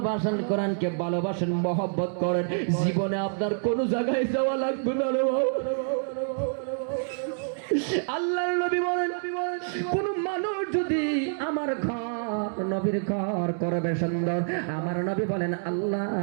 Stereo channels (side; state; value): left; silent; digital silence